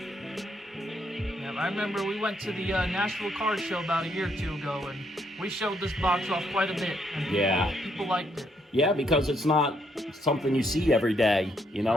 I remember we went to the Nashville Card Show about a year or two ago, and we showed this box off quite a bit. And people liked it. Yeah, because it's not something you see every day, you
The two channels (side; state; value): both; normal; correlation 0.73